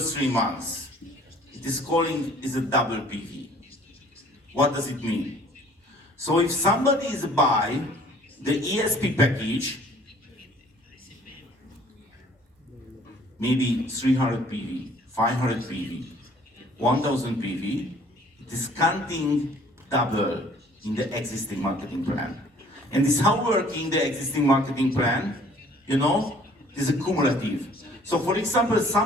3 months. It is a double PV. What does it mean? So if somebody is buy the ESP package, maybe 300 PV, 500 PV, 1000 PV, it is counting double in the existing marketing plan. And this is how working the existing marketing plan, you know, is a cumulative. So for example,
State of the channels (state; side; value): normal; both; correlation 0.55